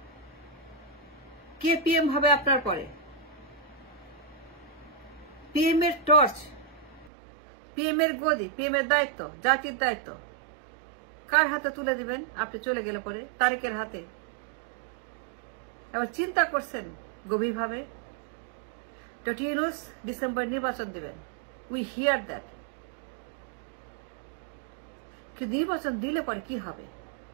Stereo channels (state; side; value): drops out; left; at 7.1 s